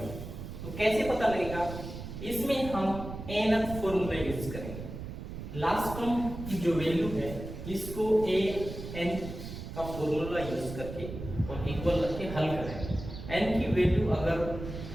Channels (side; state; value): right; noise; rumble, 9 dB below the sound